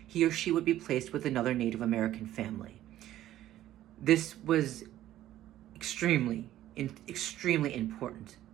he or she would be placed with another Native American family. This was extremely important,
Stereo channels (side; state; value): left; quieter; 13.3 dB